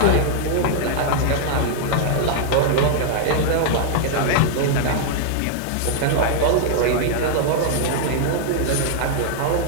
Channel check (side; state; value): both; different; correlation -0.01